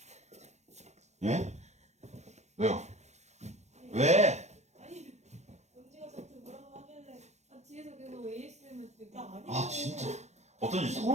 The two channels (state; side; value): late; left; 0.33 ms